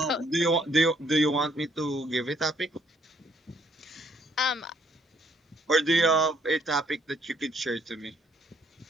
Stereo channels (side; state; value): both; normal; correlation 0.67